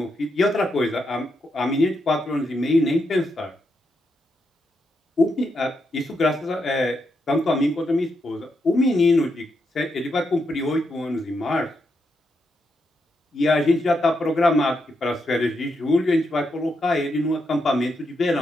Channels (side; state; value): both; normal; correlation 0.82